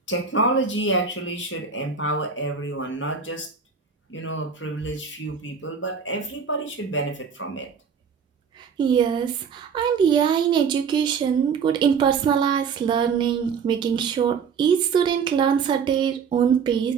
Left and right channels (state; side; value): quieter; left; 6.2 dB